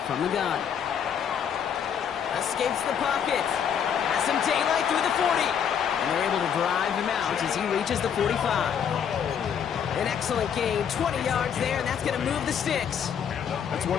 from the gun. Escapes the pocket. Has some daylight through the 40. And they're able to drive him out as he reaches the 45. An excellent gain, 20 yards there, and that's going to move the sticks. That's one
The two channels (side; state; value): right; quieter; 8.1 dB